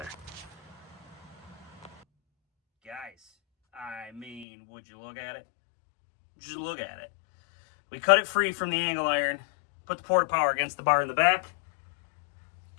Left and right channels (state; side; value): drops out; right; at 4.5 s